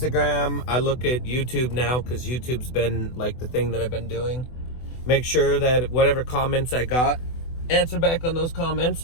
I look at YouTube now because YouTube's been like the thing that I've been doing. Make sure that whatever comments I got, answer back on those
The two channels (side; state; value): right; late; 24 ms